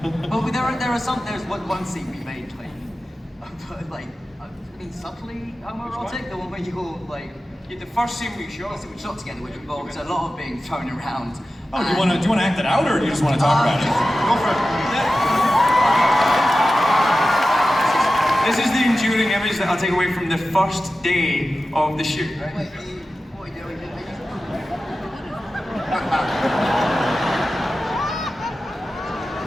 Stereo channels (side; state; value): both; normal; correlation 0.94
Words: But there's one scene we made like I mean subtly homoerotic, the one where you're like The first scene we shot. we shot together, which involves a lot of being thrown around. Oh, do you want to act it out, or do you just want to talk about it? Go for it. This is the enduring image that I'll take away from the first day of the shoot. Right? Wait, what are you doing?